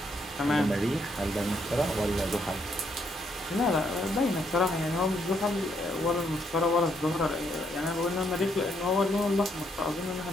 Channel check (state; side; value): normal; both; correlation 0.74